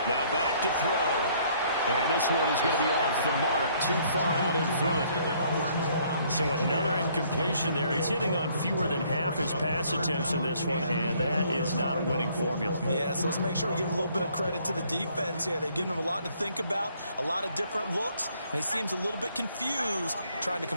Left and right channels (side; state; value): both; inverted; correlation -0.64